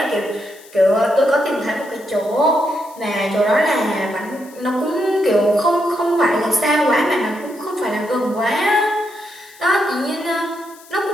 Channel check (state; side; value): noise; left; hiss, 23 dB below the sound